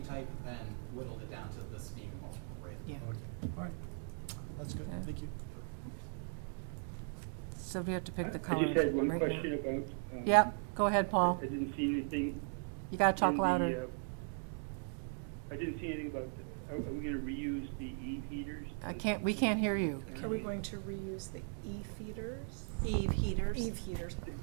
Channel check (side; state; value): left; silent; 52 dB below the other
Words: type and whittled it down to this being the most appropriate. Yeah. Okay, all right. That's good, Okay. thank you. So we have to pick the I color. just had one right now. question about. Yep, go ahead, Paul. I didn't see anything. You gotta talk in the, louder. I didn't see anything about, are we gonna reuse the heaters? We can't hear you. Are we going to reuse the E-feeders? Eve heaters. Eve heaters.